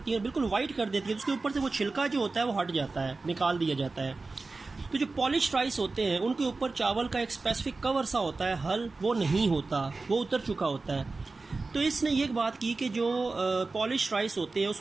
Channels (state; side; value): quieter; left; 3.7 dB